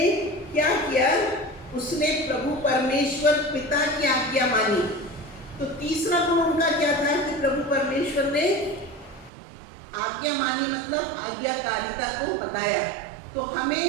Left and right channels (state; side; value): drops out; left; at 9.3 s